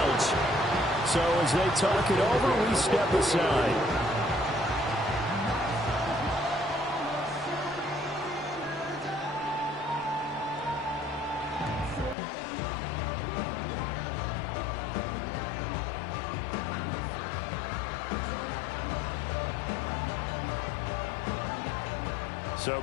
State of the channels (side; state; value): right; drops out; at 12.2 s